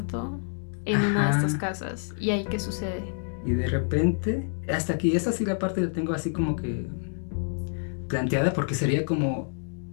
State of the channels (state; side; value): silent; right; digital silence